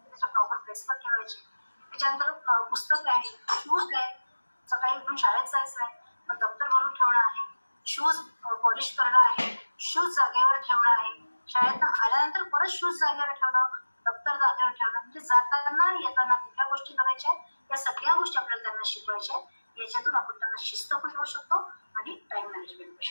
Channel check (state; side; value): inverted; both; correlation -1.00